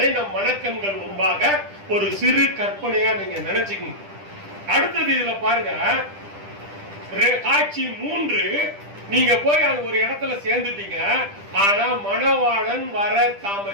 நம் மனக்கண்கள் முன்பாக ஒரு சிறு கற்பனையா நீங்க நினைச்சுக்கணும். அடுத்தது இதுல பாருங்க, காட்சி 3. நீங்க போய் அங்க ஒரு இடத்துல சேர்ந்துட்டீங்க. ஆனா மணவாளன் வர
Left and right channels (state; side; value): late; left; 10 ms